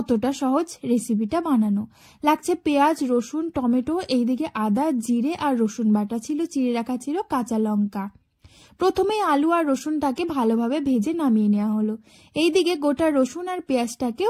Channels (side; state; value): both; identical; correlation 1.00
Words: সহজ রেসিপিটা বানানো। লাগছে পেঁয়াজ, রসুন, টমেটো, এইদিকে আদা, জিরে আর রসুন বাটা ছিল, চিড়ে রাখা ছিল কাঁচা লঙ্কা। প্রথমে আলু আর রসুনটাকে ভালোভাবে ভেজে নামিয়ে নেওয়া হলো। এইদিকে গোটা রসুন আর পেঁয়াজটাকেও